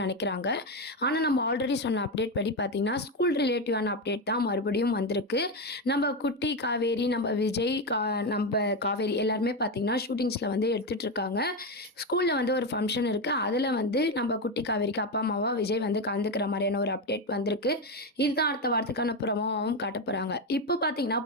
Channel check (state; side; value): normal; both; correlation 0.12